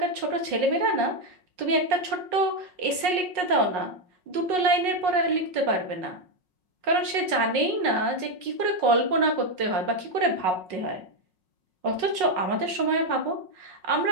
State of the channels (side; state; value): left; late; 5.5 ms